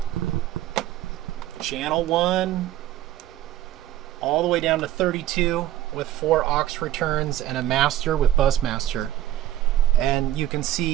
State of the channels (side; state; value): left; quieter; 13.1 dB